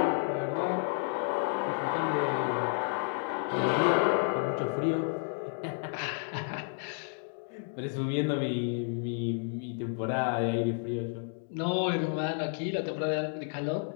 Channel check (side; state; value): right; silent; 57 dB below the other